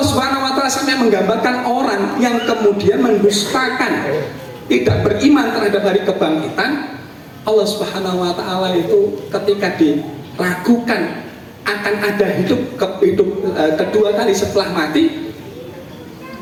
Subhanahu wa Ta'ala sampai menggambarkan orang yang kemudian mendustakan, tidak beriman terhadap hari kebangkitan. Allah Subhanahu wa Ta'ala itu ketika diragukan akan ada hidup kedua kali setelah mati,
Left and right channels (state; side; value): identical; both; correlation 1.00